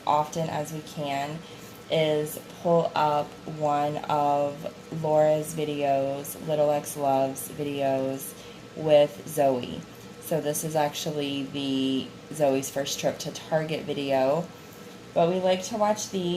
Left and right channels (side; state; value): both; identical; correlation 1.00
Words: often as we can is pull up one of Laura's videos, Little X Loves videos with Zoe. So this is actually the Zoe's first trip to Target video. But we like to watch